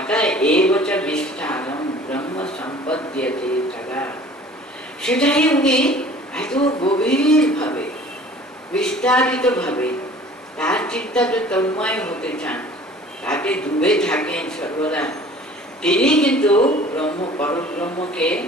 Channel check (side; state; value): both; normal; correlation 0.48